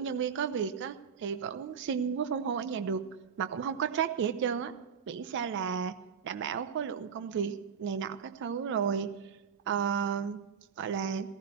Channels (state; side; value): quieter; left; 7.0 dB